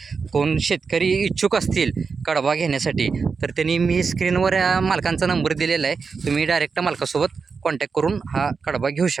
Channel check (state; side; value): quieter; left; 5.2 dB